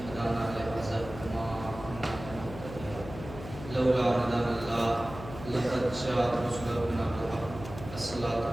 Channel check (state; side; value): noise; left; hum, 12 dB below the sound